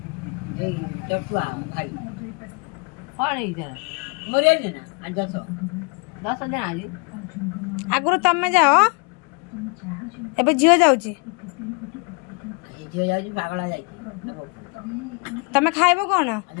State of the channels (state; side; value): quieter; right; 32.2 dB